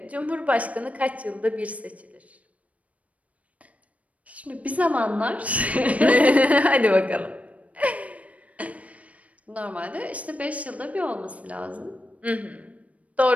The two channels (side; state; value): left; late; 0.067 ms